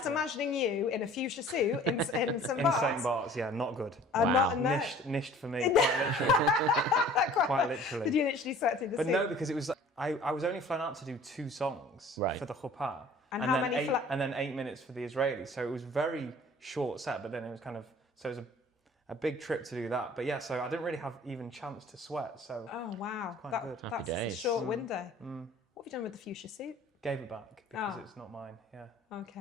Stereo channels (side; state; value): both; normal; correlation 0.49